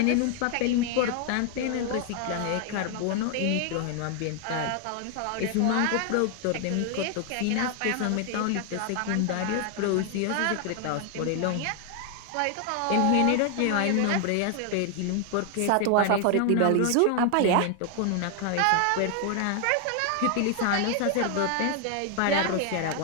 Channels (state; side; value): different; both; correlation 0.00